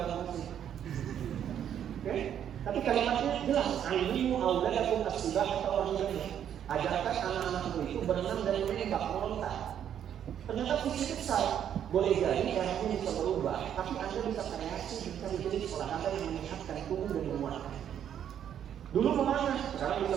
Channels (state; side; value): quieter; left; 9.5 dB